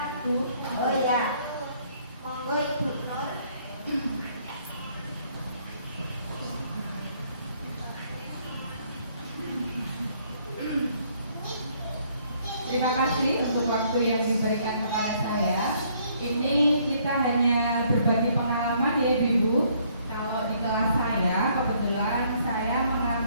Bu. Oh ya, monggo Ibu Nur. Terima kasih untuk waktu yang diberikan kepada saya. Ini kita hanya berbagi pengalaman ya Ibu. Kalau di kelas saya, kebetulan saya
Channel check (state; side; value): inverted; both; correlation -0.66